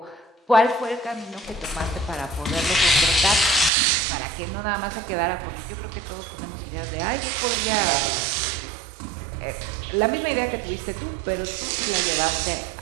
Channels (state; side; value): drops out; left; at 3.7 s